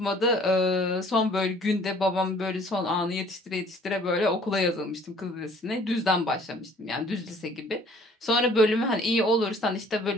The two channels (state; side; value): normal; both; correlation 0.55